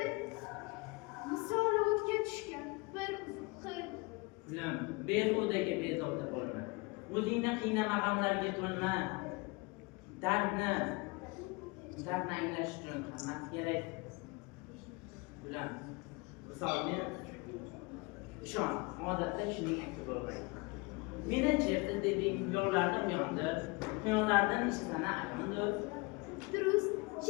Misoli o'tga tushgan bir uzuq qil. Ulam, behudaga bezovta bo'lma. O'zingni qiynama g'amlarga to'lma. Dardni anglash uchun qimmat kerak. Ulam, misolni ishon, odatda shuning aksi bo'lmaydi. Meni chertib deding, yo'llardan yondi, quyonlardan ishlana ayondir. Durust,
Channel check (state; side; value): quieter; right; 27.0 dB